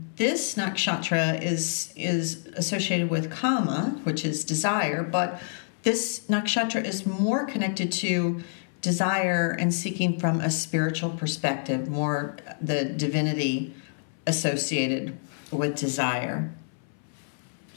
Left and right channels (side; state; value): right; silent; 59 dB below the other